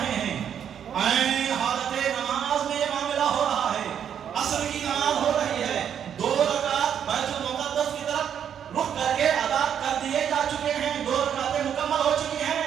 ہیں، عین حالت نماز میں یہ معاملہ ہو رہا ہے، عصر کی نماز ہو رہی ہے، 2 رکعت بیت المقدس کی طرف رخ کر کے ادا کر دیے جا چکے ہیں، 2 رکعتیں مکمل ہو چکی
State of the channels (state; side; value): quieter; left; 8.7 dB